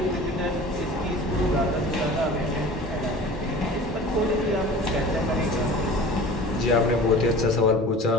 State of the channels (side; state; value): both; normal; correlation 0.40